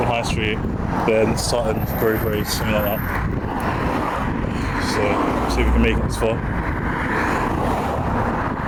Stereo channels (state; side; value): identical; both; correlation 1.00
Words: High Street, then Sutton, Grove Road, something like that. So, see if we can make it this far.